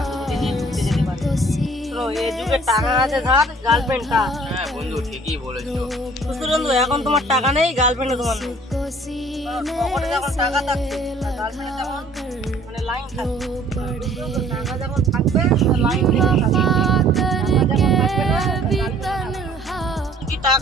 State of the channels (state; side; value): normal; both; correlation 0.55